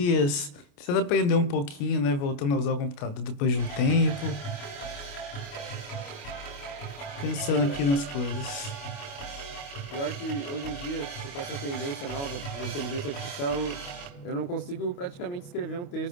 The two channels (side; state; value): right; late; 28 ms